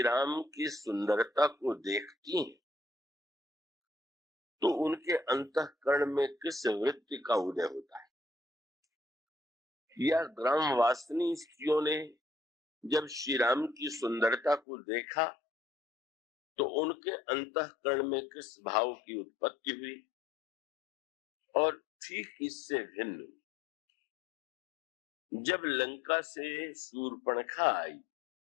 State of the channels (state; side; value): drops out; right; at 14.6 s